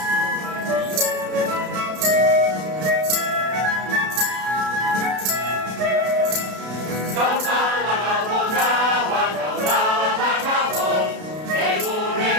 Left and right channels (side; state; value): left; late; 32 ms